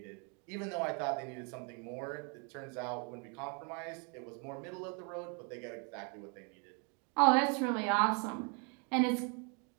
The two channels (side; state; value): left; quieter; 36.3 dB